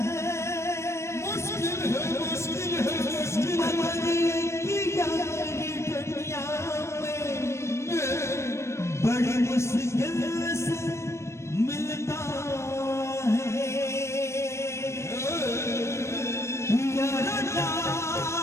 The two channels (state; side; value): late; right; 0.13 ms